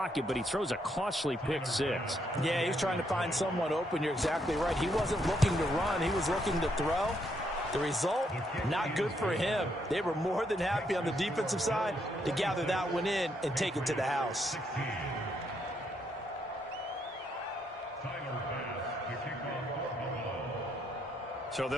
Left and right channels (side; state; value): both; normal; correlation 0.75